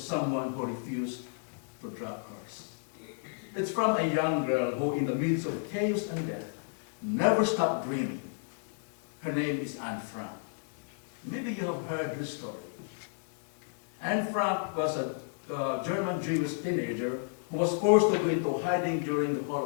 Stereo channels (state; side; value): silent; right; digital silence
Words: who refused to drop hers. It's from a young girl who, in the midst of chaos and death, never stopped dreaming. Her name is Anne Frank. Maybe you have heard her story. Anne Frank was a German Jewish teenager who was forced to go into hiding during the